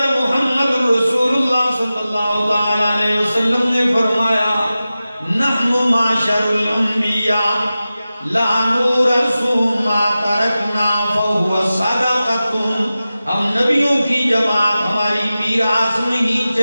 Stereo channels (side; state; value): both; inverted; correlation -0.95